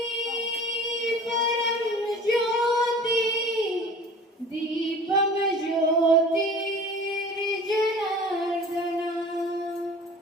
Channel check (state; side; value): normal; both; correlation 0.43